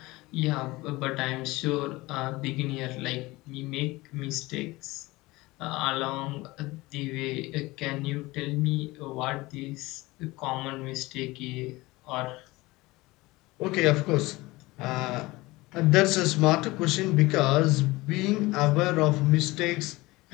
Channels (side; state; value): right; quieter; 20.9 dB